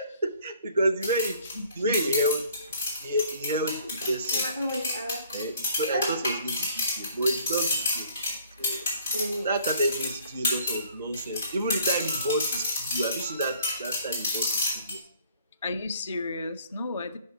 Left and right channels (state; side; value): inverted; both; correlation -0.57